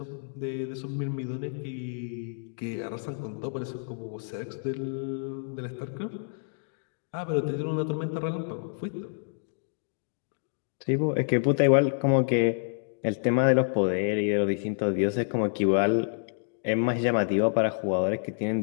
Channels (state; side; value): silent; right; digital silence